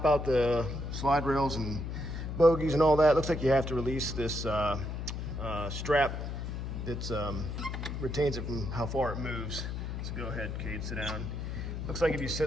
out the slide rails and bogies and all that, looks like you have to release this strap that retains it from how far it moves. So go ahead, Cade, sit down. Looks like if you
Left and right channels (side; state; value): left; noise; hum, 5 dB below the sound